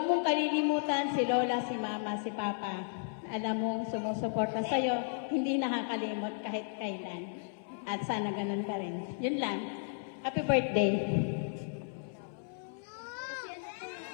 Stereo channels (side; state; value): right; silent; 55 dB below the other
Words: mong kalilimutan si lola, si mama, si papa. Alam mo, sumusuporta sa'yo, hindi nakakalimot kahit kailan. At sana ganun ka rin. Yun lang. Happy birthday.